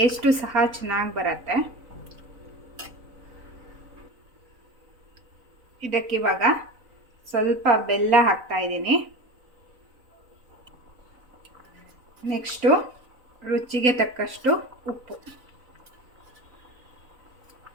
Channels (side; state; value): left; late; 4.0 ms